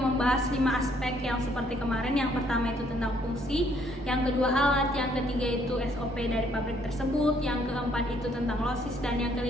5 aspek yang seperti kemarin. Yang pertama itu tentang fungsi, yang kedua alat, yang ketiga itu SOP dari pabrik tersebut, yang keempat itu tentang losis, dan yang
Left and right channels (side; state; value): both; normal; correlation 0.66